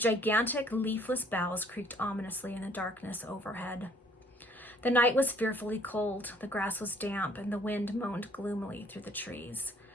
leafless boughs creaked ominously in the darkness overhead. The night was fearfully cold, the grass was damp, and the wind moaned gloomily through the trees.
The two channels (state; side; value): normal; both; correlation 0.60